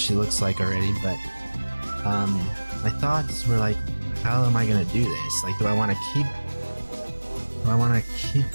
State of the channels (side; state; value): both; inverted; correlation -1.00